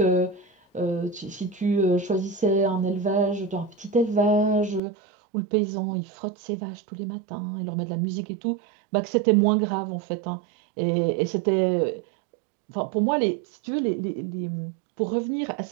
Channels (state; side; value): drops out; left; at 4.8 s